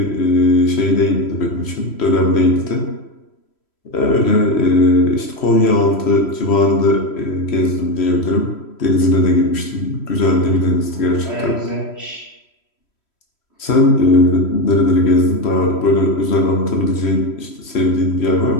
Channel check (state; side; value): late; right; 3.1 ms